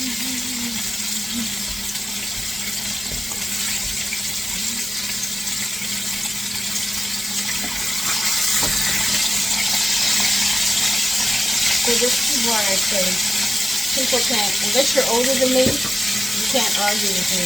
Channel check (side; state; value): both; normal; correlation 0.95